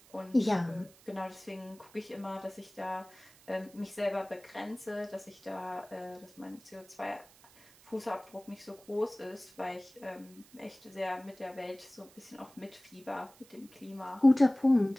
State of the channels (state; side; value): noise; right; hiss, 25 dB below the sound